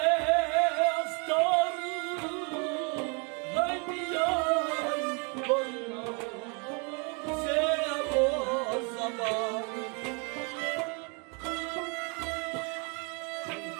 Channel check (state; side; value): quieter; left; 34.3 dB